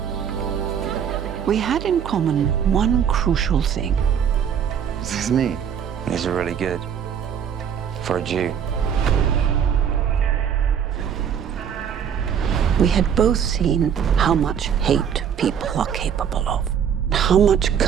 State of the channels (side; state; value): left; quieter; 8.2 dB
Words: We had in common one crucial thing. This is me. These are really good. For a Jew. We had both seen how much hate people are capable of, how much